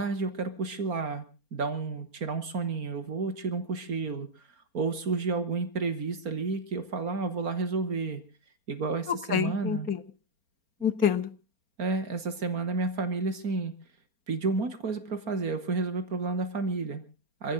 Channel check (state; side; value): late; left; 4.3 ms